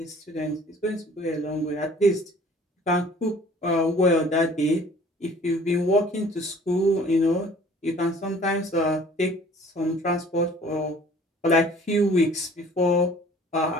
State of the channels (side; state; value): both; normal; correlation 0.52